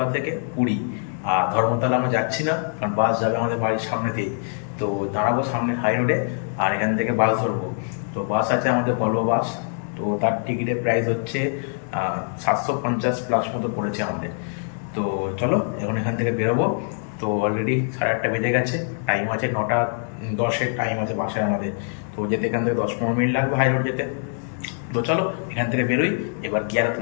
থেকে পুরী। আর ধর্মতলা আমরা যাচ্ছি না, কারণ বাস যাবে আমাদের বাড়ির সামনে দিয়ে। তো দাঁড়াবো সামনে হাই রোডে, আর এখান থেকে বাস ধরবো। তো বাস আছে আমাদের ভলভো বাস। তো তার টিকিটের প্রাইস হচ্ছে 750+ মতো পড়েছে আমাদের। তো চলো এখন এখান থেকে বেরোবো। তো অলরেডি 8:30 বেজে গেছে, টাইম আছে 9:10 টাইম আছে বাসের আমাদের। তো যেতে এখান থেকে 10-15 মিনিট লাগবে হাই রোড যেতে। তো চলো এখান থেকে বেরোই। এবার কি আর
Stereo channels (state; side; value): silent; right; 63 dB below the other